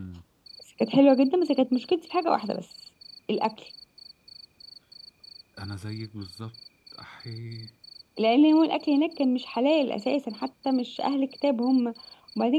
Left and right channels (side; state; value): both; identical; correlation 1.00